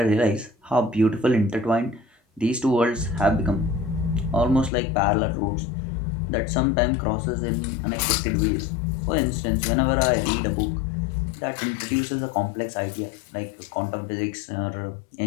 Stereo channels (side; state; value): right; drops out; at 4.7 s